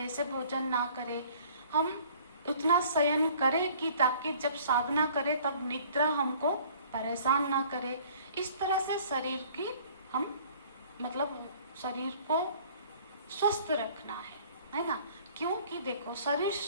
भोजन ना करें। हम उतना शयन करें कि ताकि जब साधना करें तब निद्रा हमको परेशान ना करे। इस तरह से शरीर की हम मतलब शरीर को स्वस्थ रखना है ना? क्योंकि देखो, शरीर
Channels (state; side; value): inverted; both; correlation -0.52